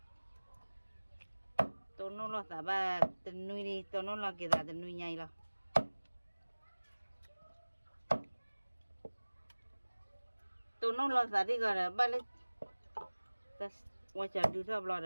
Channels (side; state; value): both; inverted; correlation -1.00